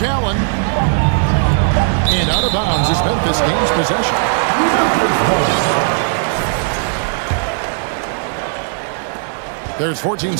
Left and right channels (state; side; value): silent; left; digital silence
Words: Allen. And out of bounds as Memphis gains possession. There's 14